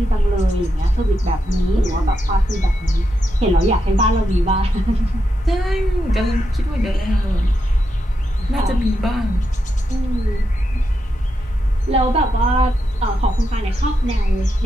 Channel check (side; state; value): both; normal; correlation 0.84